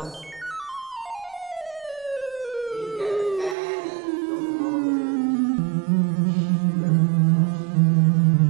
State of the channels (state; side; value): drops out; left; at 3.6 s